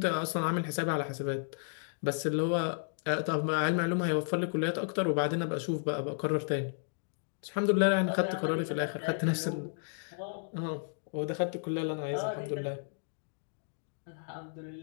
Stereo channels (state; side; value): silent; right; digital silence